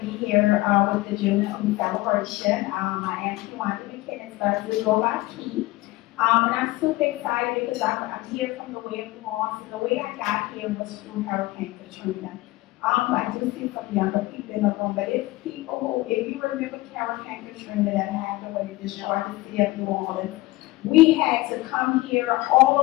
be here with the JuneTeenth celebration. I am Kewenda McKinnis, but I do go by Key. And I'm super excited because I'm here from the way of New Orleans, and the way I got here was through Hurricane Katrina. I do see some younger people in the room, but if you remember Hurricane Katrina that happened when it destroyed the city of New Orleans, we had to come here, all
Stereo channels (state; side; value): quieter; right; 19.6 dB